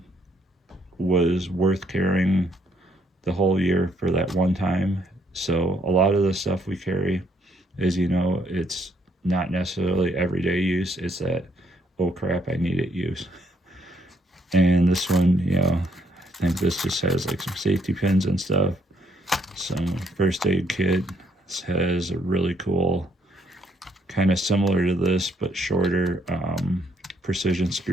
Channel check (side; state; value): both; normal; correlation 0.69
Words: was worth carrying the whole year for that one time. So a lot of the stuff we carry, as you know, it's not necessarily everyday use. It's that, oh crap, I need it use. And this one, you know, I think this just has like some safety pins and stuff, some first aid kit. This has a really cool, kind of similar to this but shorter, precision